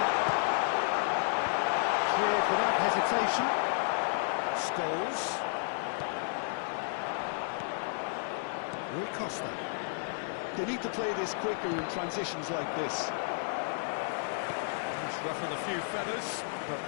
Cleared without hesitation. Scholes. Rui Costa. They need to play this quicker in transitions like this. He's ruffled a few feathers, but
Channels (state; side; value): silent; right; digital silence